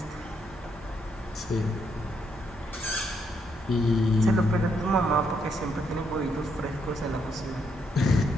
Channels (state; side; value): normal; both; correlation 0.76